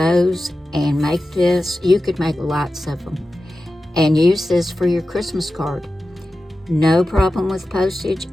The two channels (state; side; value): normal; both; correlation 0.93